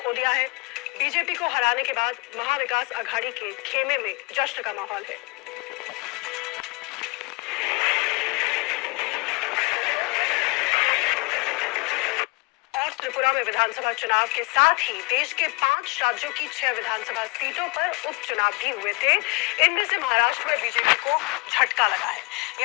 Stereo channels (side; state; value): right; quieter; 28.1 dB